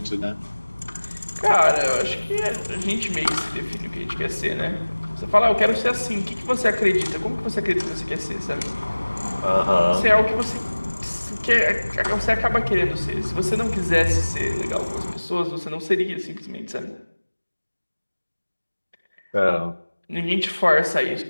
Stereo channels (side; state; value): both; inverted; correlation -1.00